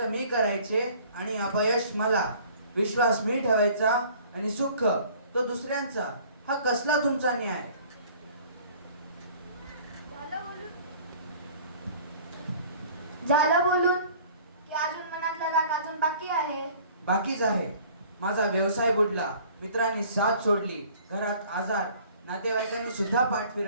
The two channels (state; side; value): inverted; both; correlation -0.51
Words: मी करायचे आणि अपयश मला, विश्वास मी ठेवायचा आणि सुख तो दुसऱ्यांचा. हा कसला तुमचा न्याय? झालं बोलून की अजून मनातला राग अजून बाकी आहे. बाकीच आहे. माझा व्यवसाय बुडला, मित्रांनी साथ सोडली, घरात आजार, नातेवाईकांनी सुद्धा पाठ